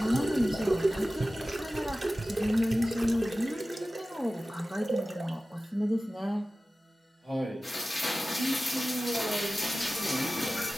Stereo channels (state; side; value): normal; both; correlation 0.96